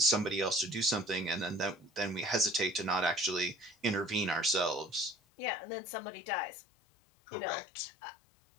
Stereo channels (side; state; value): right; drops out; at 5.2 s